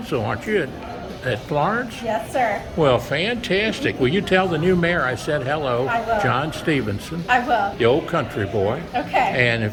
aren't you, at Florence? Yes, sir. Well, fantastic. Will you tell the new mayor I said hello? I will. John Stephenson. I will. The old country boy. Okay. And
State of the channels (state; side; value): identical; both; correlation 1.00